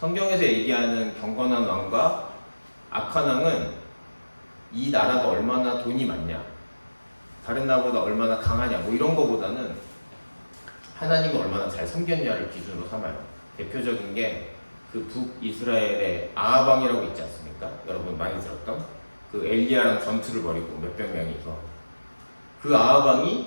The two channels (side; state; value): both; inverted; correlation -1.00